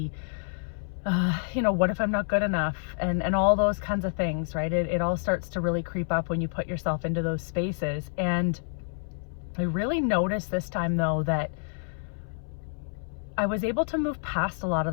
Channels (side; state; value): right; silent; 59 dB below the other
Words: what if I'm not good enough, and all those kinds of things, right? It all starts to really creep up when you put yourself into those spaces. And I really noticed this time though that I was able to move past a lot of